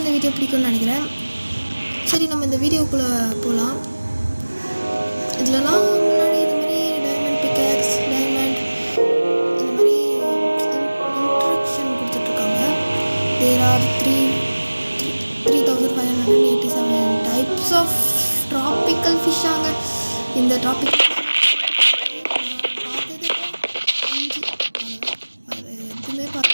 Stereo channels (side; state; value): both; inverted; correlation -1.00